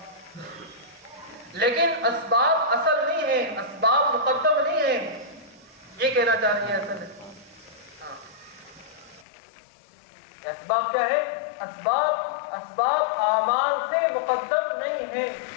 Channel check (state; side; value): drops out; right; at 9.2 s